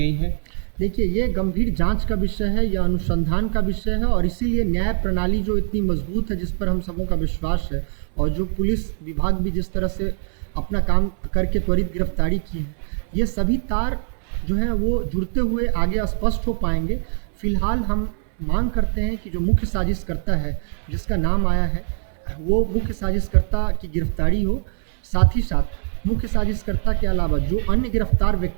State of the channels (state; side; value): silent; left; 64 dB below the other